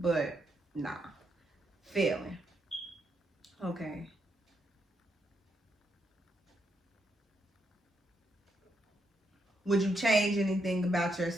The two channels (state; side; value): normal; both; correlation 0.79